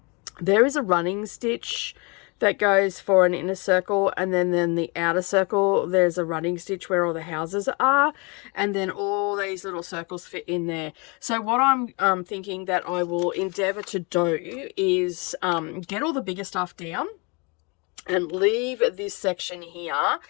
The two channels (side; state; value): right; quieter; 30.8 dB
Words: There is a running stitch that goes for an inner circle, and then the outer circle, there's a running stitch where all the houses are, and then all these little circles fit in there. So what I'm thinking that I will endeavor to do is get all the bigger stuff down and leave this section here